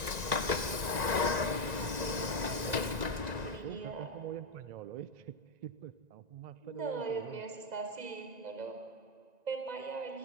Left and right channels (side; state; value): left; late; 1.9 ms